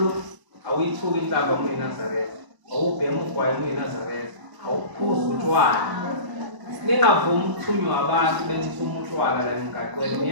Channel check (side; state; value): left; late; 1.0 ms